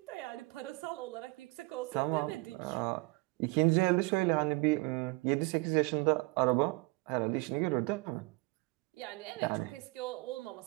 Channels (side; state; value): left; quieter; 25.6 dB